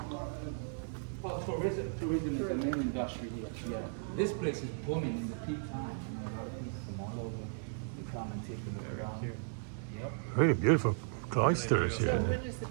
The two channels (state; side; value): silent; left; digital silence